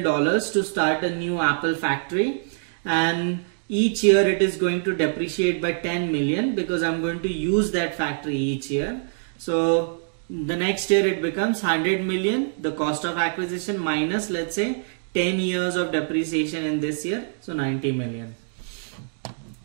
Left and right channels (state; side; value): silent; left; digital silence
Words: to start a new Apple factory, and each year it is going to depreciate by 10 million because I'm going to use that factory each year. So the next year it becomes 100 million, the cost of acquisition, minus let's say 10 years of depreciation in this year, so 90 million.